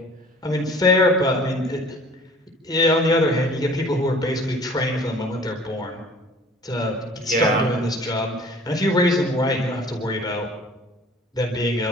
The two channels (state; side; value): normal; both; correlation 0.49